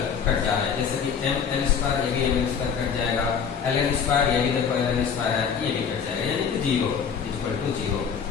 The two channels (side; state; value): right; quieter; 7.0 dB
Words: कट जा रहे हैं, जैसे कि m l स्क्वायर ये भी m l स्क्वायर कट जाएगा, l n स्क्वायर ये भी देखो l n स्क्वायर है ये भी कट जाएगा, यानी कि 0 equal to 0।